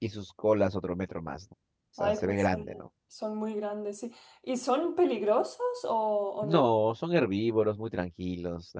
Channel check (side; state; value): both; identical; correlation 1.00